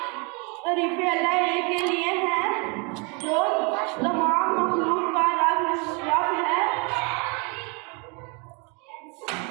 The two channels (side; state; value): left; quieter; 32.4 dB